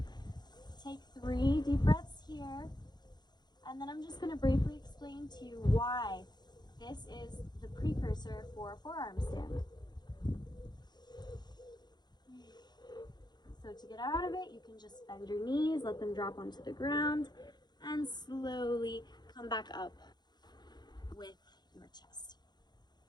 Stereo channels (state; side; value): late; right; 0.21 ms